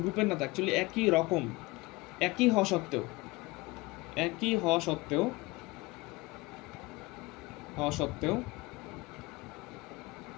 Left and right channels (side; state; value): right; quieter; 22.7 dB